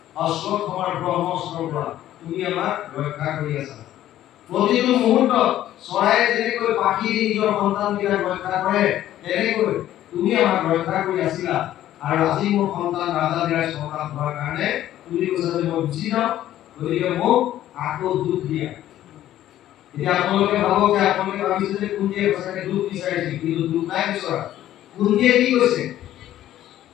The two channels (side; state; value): right; quieter; 12.9 dB